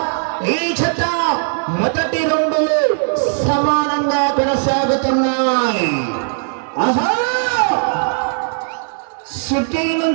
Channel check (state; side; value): silent; left; 59 dB below the other